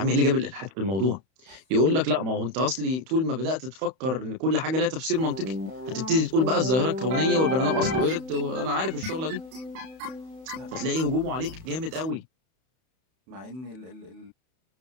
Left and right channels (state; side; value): late; left; 31 ms